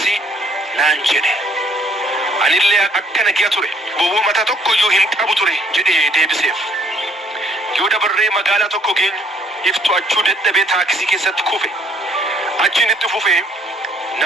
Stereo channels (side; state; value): both; normal; correlation 0.63